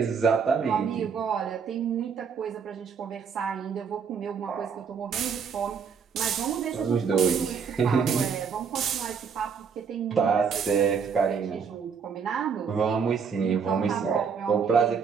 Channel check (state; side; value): quieter; left; 6.3 dB